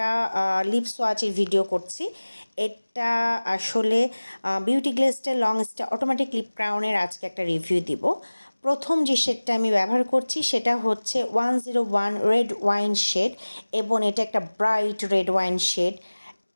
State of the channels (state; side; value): inverted; both; correlation -1.00